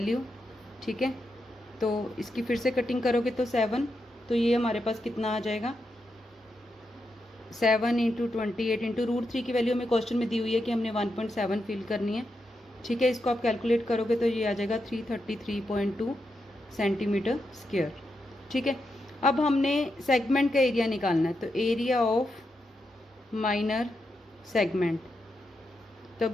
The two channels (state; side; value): normal; both; correlation 0.85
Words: ठीक है, तो इसकी फिर से कटिंग करोगे तो 7, तो ये हमारे पास कितना आ जाएगा 7 इंटू 28 इंटू √3 की वैल्यू हमें क्वेश्चन में दी हुई है कि हमने 1.7 फिल करनी है। ठीक है, इसको आप कैलकुलेट करोगे तो ये आ जाएगा 333.2 सेंटीमीटर स्क्वायर। ठीक है, अब हमने सेगमेंट का एरिया निकालना है, तो एरिया ऑफ माइनर सेगमेंट, तो